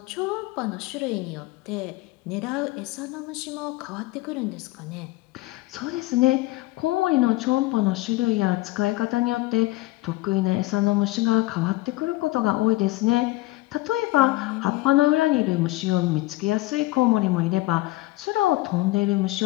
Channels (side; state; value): right; quieter; 19.3 dB